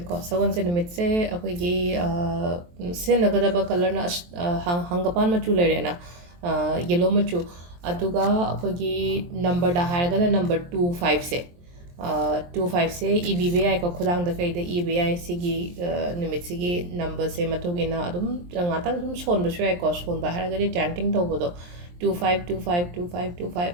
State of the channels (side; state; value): left; late; 23 ms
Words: ko. Sawan se numit se akoigi se nagadaba color na hangapan machu lere na yellow machu. Aduga akoigi number da haraga na number 25 se. 25 se EBI ko khudang da kai da EBI sigi numit sigi number se matugina adum ngatang sum son ba shwai ko son ba haraga di chanting to bodo